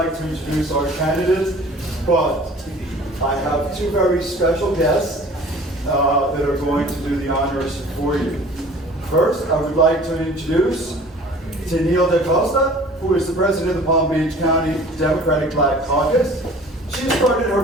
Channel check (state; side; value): normal; both; correlation 0.47